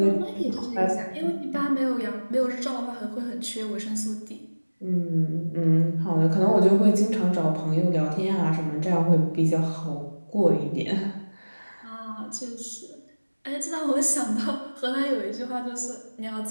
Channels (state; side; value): inverted; both; correlation -1.00